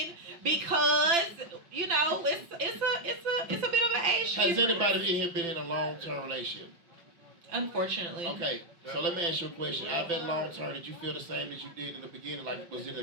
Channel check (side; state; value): left; late; 5.9 ms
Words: because you know it's a bit of an age shift. Has anybody in here been in a long-term relationship? Unfortunately. Okay, so let me ask you a question. I bet long term, did you feel the same as you did in the beginning? Like, was it